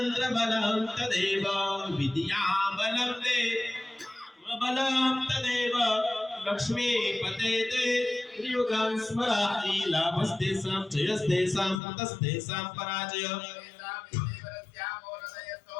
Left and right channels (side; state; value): right; drops out; at 11.8 s